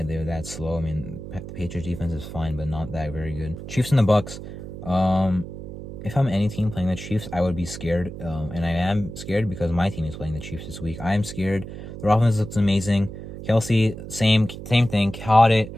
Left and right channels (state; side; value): noise; right; hum, 11 dB below the sound